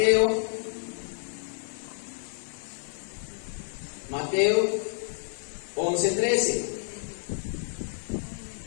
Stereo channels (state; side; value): silent; right; digital silence